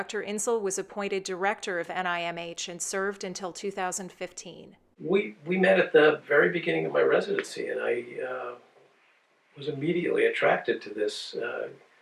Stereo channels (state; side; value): identical; both; correlation 1.00